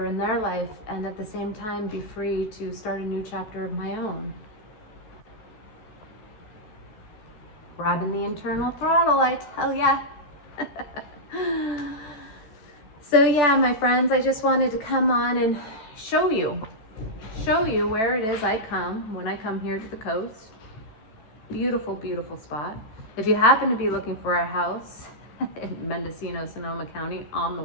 in their life, and at the same time be free to start a new chapter of my own. Grabbing the internal throttle, I tell ya. So yeah, my friends, I just wanted to come on and show you where it is I come when I come here to the coast. Beautiful, beautiful spot. If you happen to be looking for a house in Mendocino, Sonoma County on the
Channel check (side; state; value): right; late; 14 ms